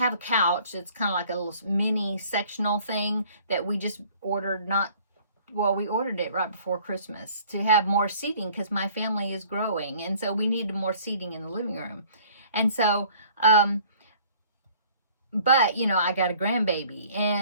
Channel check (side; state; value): both; inverted; correlation -0.54